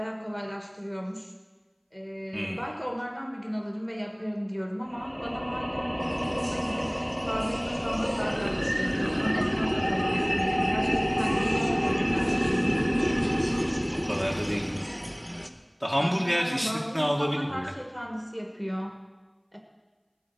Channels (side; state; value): both; identical; correlation 1.00